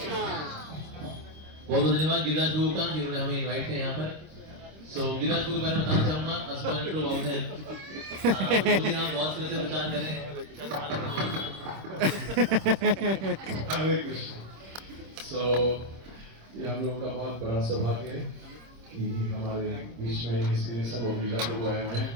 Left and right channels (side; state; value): left; late; 26 ms